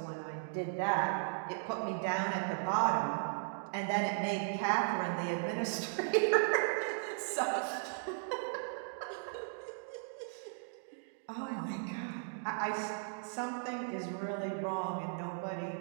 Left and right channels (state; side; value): silent; left; digital silence